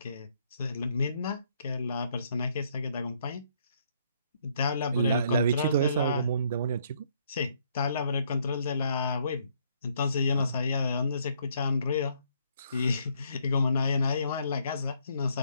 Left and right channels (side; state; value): both; inverted; correlation -0.68